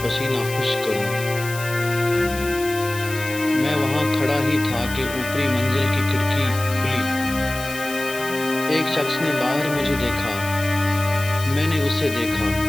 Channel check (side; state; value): left; noise; hiss, 11 dB below the sound